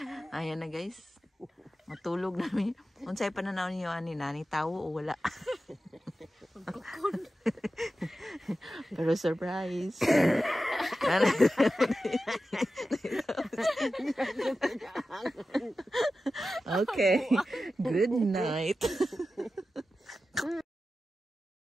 Ayan na guys. Matulog namin. Unsay pananaw niyo ani nani tawo o wala? Pero surprise. Okay. Good night.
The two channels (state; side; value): normal; both; correlation 0.93